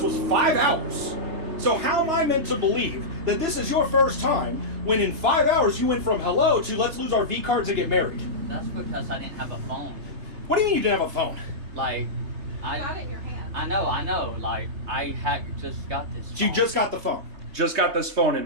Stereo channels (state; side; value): late; left; 3.2 ms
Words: 5 hours. So how am I meant to believe that this is your first time when in 5 hours you went from hello to let's lose our V cards and get married? That's because I didn't have a phone. What do you mean you didn't have a phone? Like, Got it in your hand. I know. Like, I had just got this phone. So you just got the phone. Just got this phone and